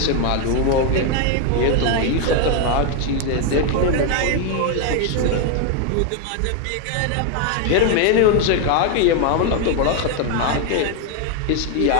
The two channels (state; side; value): different; both; correlation 0.01